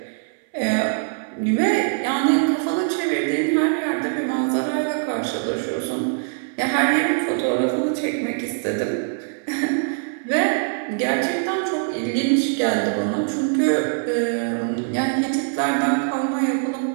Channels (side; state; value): left; silent; 63 dB below the other